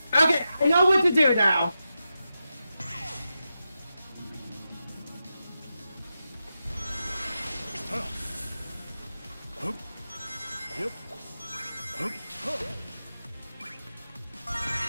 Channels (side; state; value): both; inverted; correlation -0.90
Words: Okay, I know what to do now. Hup. Yep. Hup. Hup.